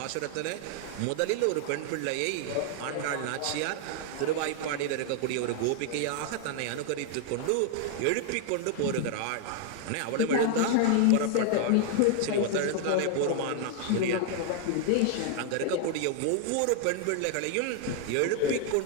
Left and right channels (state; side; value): different; both; correlation 0.00